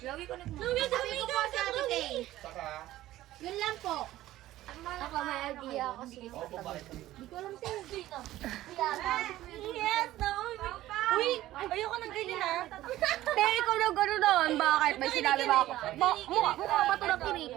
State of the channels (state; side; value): quieter; left; 15.1 dB